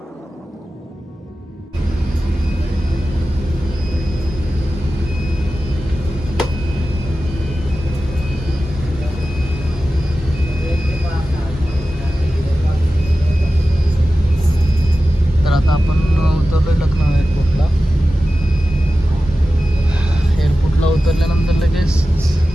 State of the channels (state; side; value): normal; both; correlation 0.94